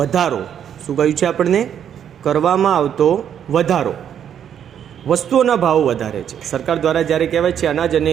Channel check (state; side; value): quieter; left; 9.1 dB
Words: શું કહ્યું છે આપણને? કરવામાં આવતો વધારો. વસ્તુઓના ભાવ વધારે છે. સરકાર દ્વારા જ્યારે કહેવાય છે અનાજ અને